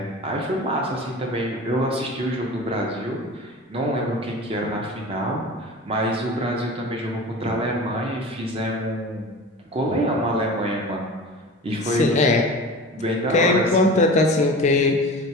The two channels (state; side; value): normal; both; correlation 0.35